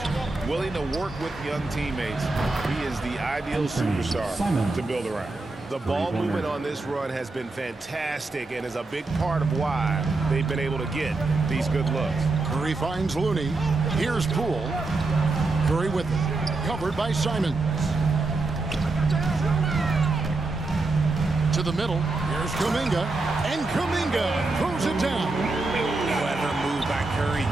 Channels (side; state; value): left; quieter; 3.4 dB